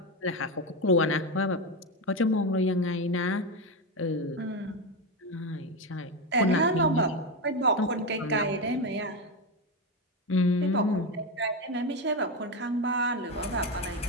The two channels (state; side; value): normal; both; correlation 0.13